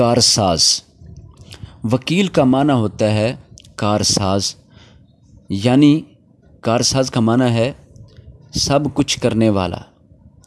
وکیل کا معنی ہوتا ہے کارساز، یعنی کارساز کا معنی ہے سب کچھ کرنے والا،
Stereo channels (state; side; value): identical; both; correlation 1.00